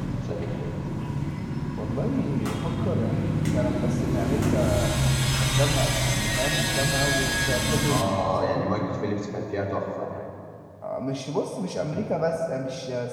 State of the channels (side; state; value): both; identical; correlation 1.00